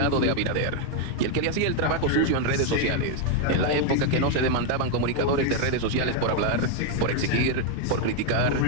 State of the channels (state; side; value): different; both; correlation 0.01